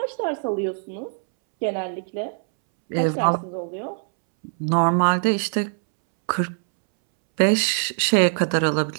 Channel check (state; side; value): silent; left; 64 dB below the other